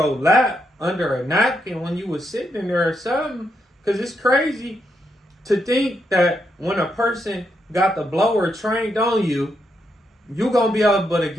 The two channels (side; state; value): both; normal; correlation 0.81